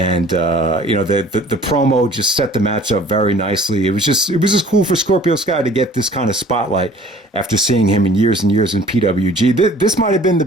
the promo just set the match up very nicely. It was just cool for Scorpio Sky to get this kind of spotlight after seeing him in years and years in PWG. This might have been the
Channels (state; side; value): normal; both; correlation 0.51